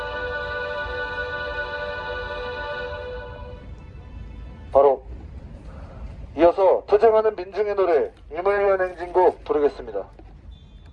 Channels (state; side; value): identical; both; correlation 1.00